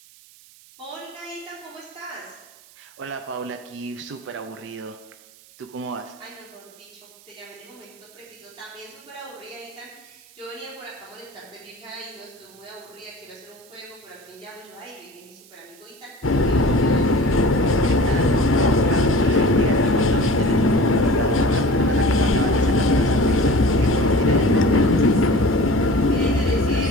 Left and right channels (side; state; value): right; noise; hiss, 25 dB below the sound